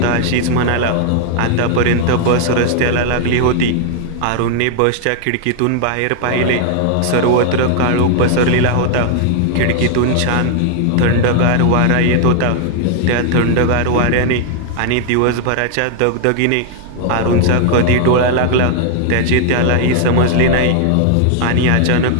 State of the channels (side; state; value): both; different; correlation 0.00